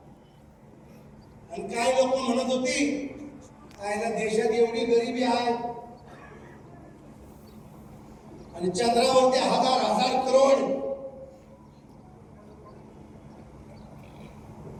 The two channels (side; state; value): both; identical; correlation 1.00